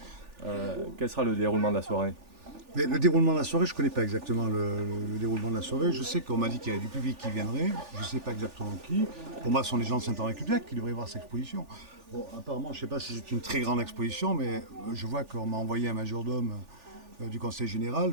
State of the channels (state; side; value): late; left; 3.4 ms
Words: Quel sera le déroulement de la soirée? Mais le déroulement de la soirée, je ne connais pas exactement le déroulement de la soirée. Je sais qu'on m'a dit qu'il y avait du public qui viendrait. Je ne sais pas exactement qui. Pour moi, ce sont les gens de Saint-Henri-Cubliac qui devraient voir cette exposition. Bon, apparemment, je ne sais pas si c'est une très grande exposition, mais je vois qu'on m'a envoyé un majordome du Conseil général.